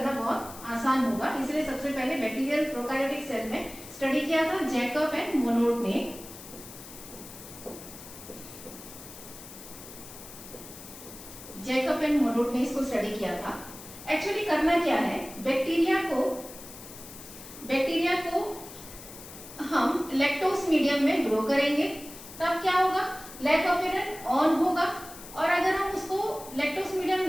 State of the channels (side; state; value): left; noise; hiss, 15 dB below the sound